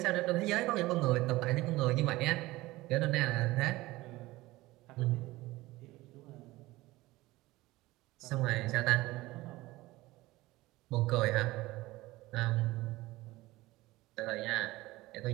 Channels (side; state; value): left; quieter; 19.1 dB